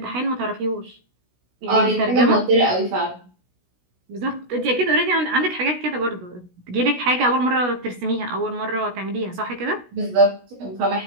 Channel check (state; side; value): late; left; 16 ms